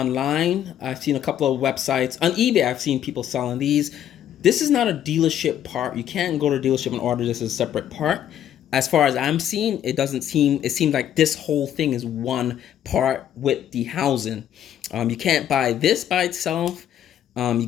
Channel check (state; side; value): quieter; right; 10.5 dB